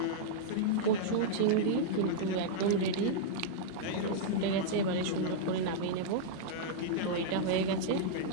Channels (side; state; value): both; different; correlation -0.02